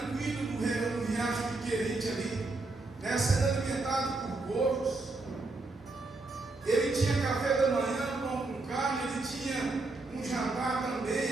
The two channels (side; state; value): left; quieter; 3.3 dB